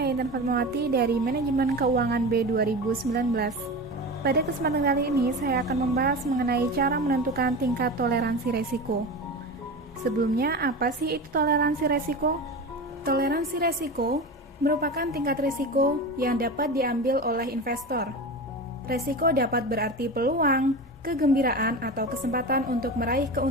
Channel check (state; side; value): normal; both; correlation 0.27